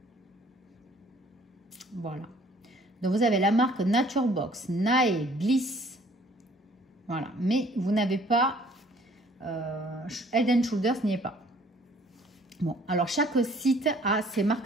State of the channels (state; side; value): normal; both; correlation 0.57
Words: Voilà. Donc vous avez la marque Nature Box, Nae, Bliss. Voilà. Mais vous n'avez pas Head and Shoulders n'y est pas. Bon, alors chaque site a ses